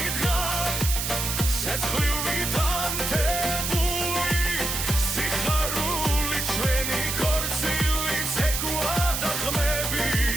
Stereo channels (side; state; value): right; noise; hiss, 2 dB below the sound